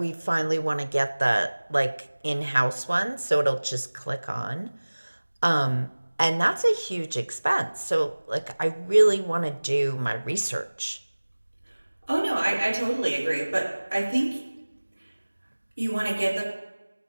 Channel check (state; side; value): inverted; both; correlation -1.00